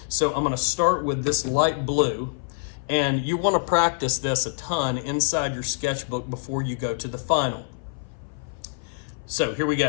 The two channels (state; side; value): silent; right; 57 dB below the other